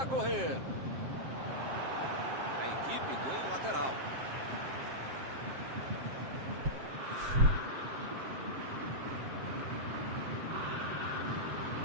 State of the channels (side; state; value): left; late; 7.6 ms